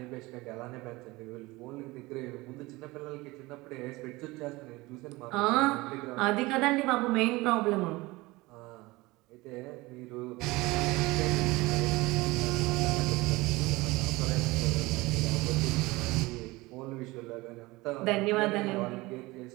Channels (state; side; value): quieter; left; 21.5 dB